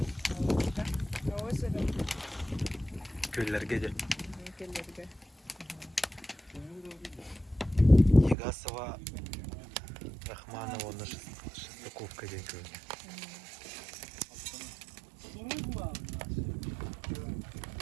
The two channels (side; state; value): left; drops out; at 8.3 s